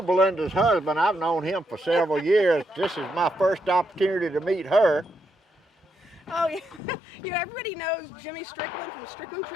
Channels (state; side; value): drops out; right; at 6.8 s